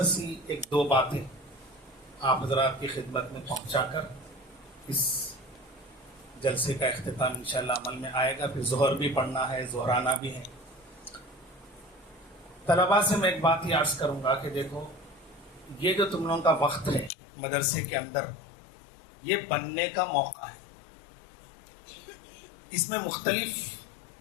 سی ایک دو باتیں آپ حضرات کی خدمت میں پہنچا کر اس جلسے کا اختتام انشاءاللہ عمل میں آئے گا. پھر ظہر بھی پڑھنا ہے، ظہرانہ بھی ہے. طلباء سے میں ایک بات ہی عرض کروں گا کہ دیکھو، یہ جو تم لوگوں کا وقت ہے مدرسے کے اندر، یہ بننے کا موقع ہے. اس میں مختلف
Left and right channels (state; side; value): drops out; right; at 17.1 s